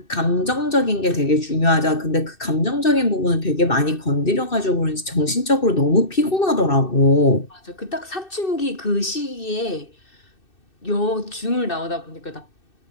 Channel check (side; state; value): right; late; 2.6 ms